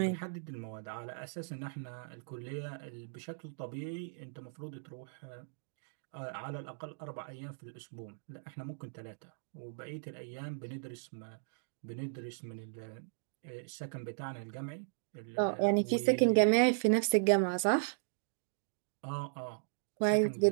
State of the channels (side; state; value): left; silent; digital silence